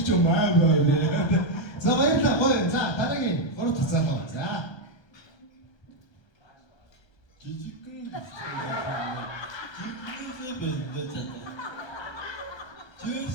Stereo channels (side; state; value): right; late; 1.3 ms